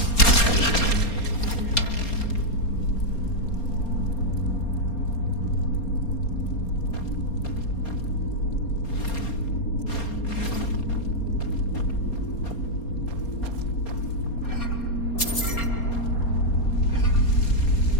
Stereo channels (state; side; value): late; right; 4.3 ms